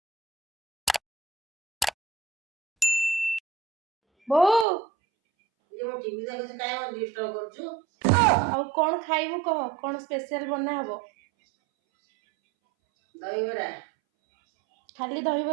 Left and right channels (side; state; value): left; drops out; at 4.7 s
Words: बो ये मो टीवी देखै छै काहे मो डिस्टर्ब करछु। आउ कोन खाइबु कह कोन स्पेशल बना हबो। दहीबरा खाली